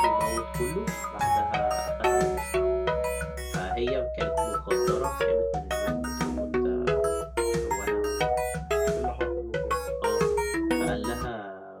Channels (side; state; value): both; identical; correlation 1.00